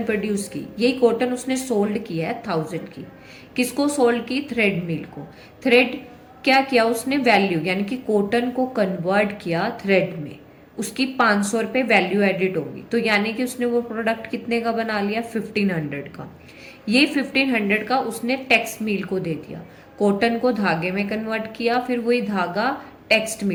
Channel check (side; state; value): both; identical; correlation 1.00